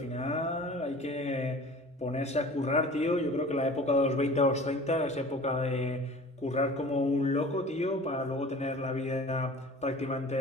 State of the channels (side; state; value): both; normal; correlation 0.43